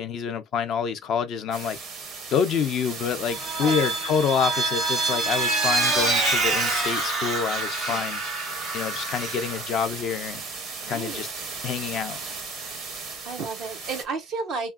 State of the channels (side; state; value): both; normal; correlation 0.48